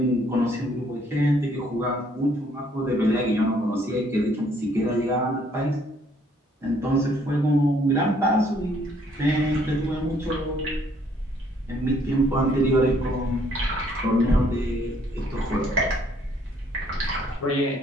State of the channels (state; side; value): normal; both; correlation 0.64